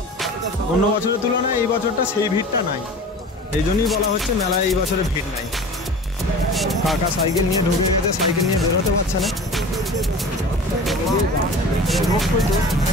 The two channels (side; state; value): both; normal; correlation 0.38